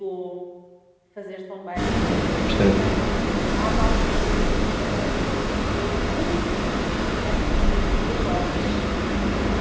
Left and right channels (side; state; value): both; identical; correlation 1.00